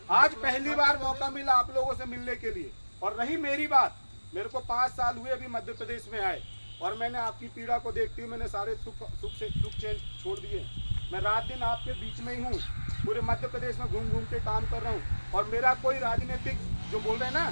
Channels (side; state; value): both; inverted; correlation -1.00